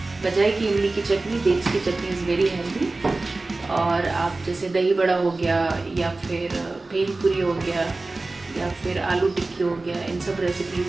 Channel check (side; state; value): left; quieter; 3.3 dB